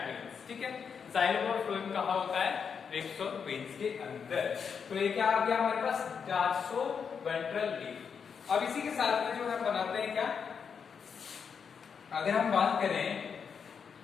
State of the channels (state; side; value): quieter; right; 6.5 dB